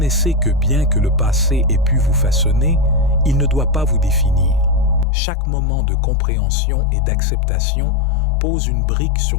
que bien que le passé ait pu vous façonner, il ne doit pas vous définir. Chaque moment de compréhension et d'acceptation pose une brique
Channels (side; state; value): right; drops out; at 5.1 s